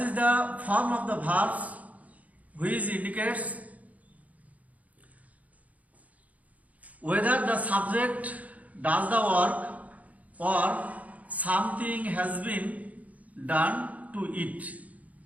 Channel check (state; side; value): late; left; 0.072 ms